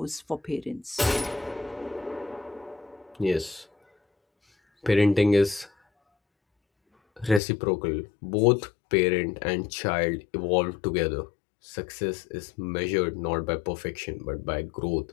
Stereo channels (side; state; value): right; drops out; at 7.4 s